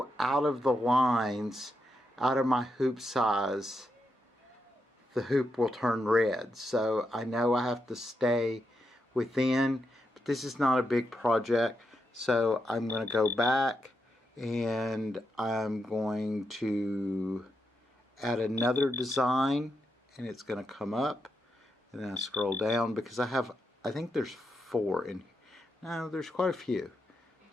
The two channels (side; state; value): both; normal; correlation 0.83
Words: out of the lines, out of my hoop size, the hoop will turn red. So I know I have to stay within, but this is not a big project. So I'm going to go back and I'm going to add another design, and it's going to come up, and then I scroll down because I think there's 4 in here. No, there's quite a few.